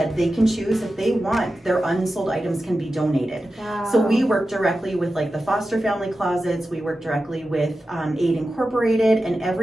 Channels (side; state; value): both; normal; correlation 0.93